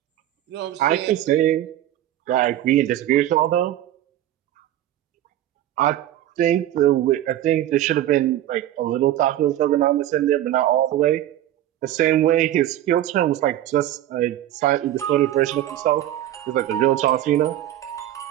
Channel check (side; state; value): left; quieter; 13.0 dB